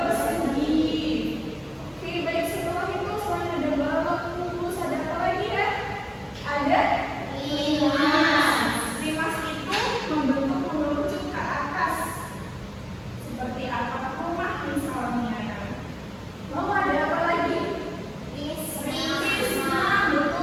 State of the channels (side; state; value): both; identical; correlation 1.00